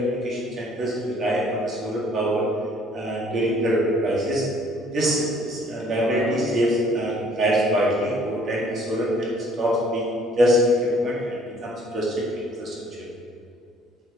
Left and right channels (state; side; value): normal; both; correlation 0.59